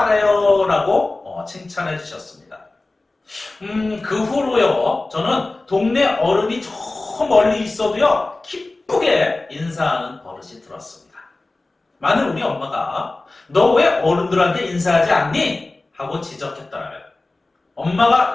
라고 칭찬해 주셨습니다. 그 후로요, 저는 동네 어른이 저 멀리 있어도요, 기쁘게 인사하는 버릇이 들었습니다. 만일 우리 엄마가 너 왜 어른들한테 인사하지 않니? 하고 지적했더라면 엄마가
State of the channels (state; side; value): quieter; right; 3.1 dB